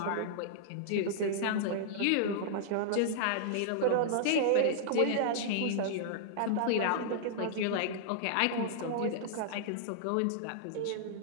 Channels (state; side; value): different; both; correlation -0.02